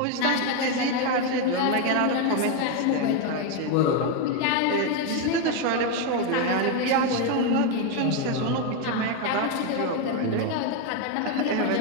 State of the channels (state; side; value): different; both; correlation 0.02